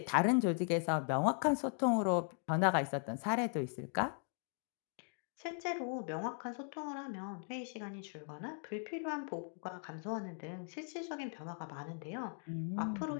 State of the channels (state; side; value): silent; right; 52 dB below the other